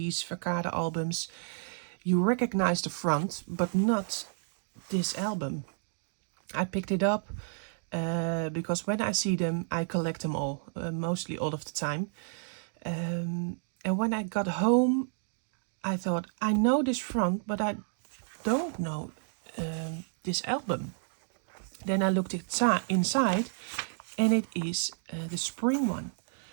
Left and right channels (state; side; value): silent; left; digital silence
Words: Verkade albums, you recognize the front, but not this album. I picked it up because when I see them, I collect them all, mostly all of the time. And when I got home, I thought, I know this front, but I don't know this album. Then I looked inside, and it is the spring one.